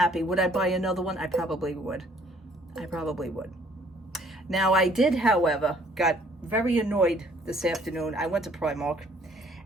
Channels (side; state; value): both; normal; correlation 0.61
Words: Would I buy another one? I probably would. I probably would. Now, I did, however, got very annoyed this afternoon. I went to Primark,